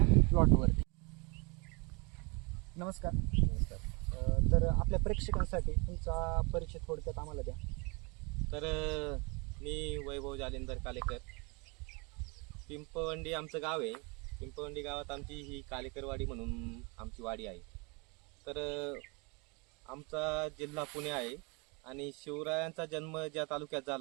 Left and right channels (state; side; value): quieter; left; 30.0 dB